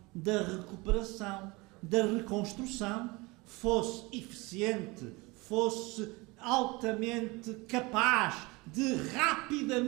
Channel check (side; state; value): left; quieter; 24.4 dB